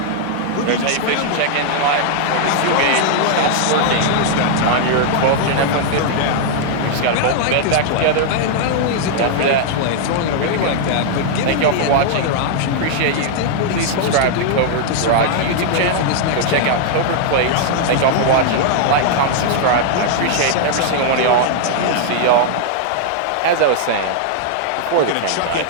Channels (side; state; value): both; different; correlation -0.01